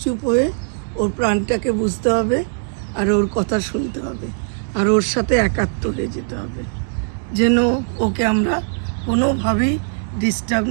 হয়ে ওর প্রাণটাকে বুঝতে হবে আর ওর কথা শুনতে হবে আর ওর সাথে একাত্ম হয়ে যেতে হবে, যেন ওকে আমরা কোনোভাবেই ডিস্টার্ব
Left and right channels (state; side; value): silent; left; digital silence